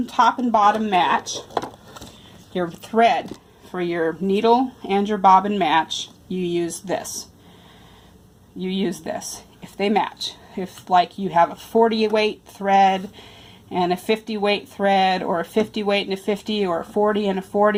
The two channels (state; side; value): identical; both; correlation 1.00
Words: top and bottom match, your thread for your needle and your bobbin match, you use this. You use this if they match. If like you have a 40 weight thread and a 50 weight thread, or a 50 weight and a 50, or a 40 and a